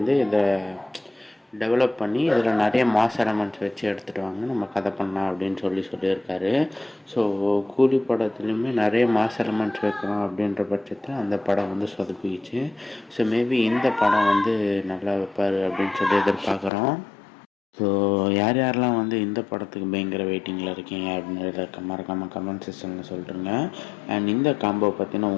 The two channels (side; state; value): right; drops out; at 16.7 s